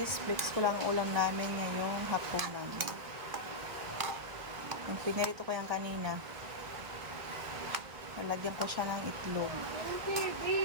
flex ko lang ang ulam namin ngayong hapunan. Yung pinarito ko yan kanina. Nalagyan ko siya ng itlog.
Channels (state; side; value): late; left; 1.6 ms